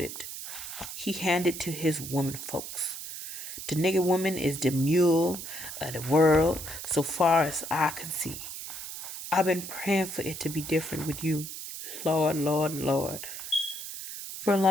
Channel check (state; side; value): noise; right; hiss, 9 dB below the sound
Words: He hand it to his woman folks. The nigger woman is the mule of the world so far as I can see. I've been praying for it to be different with you. Lord, Lord, Lord. For a